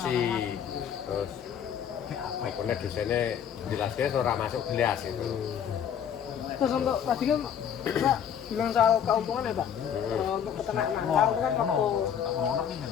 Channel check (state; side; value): quieter; right; 8.6 dB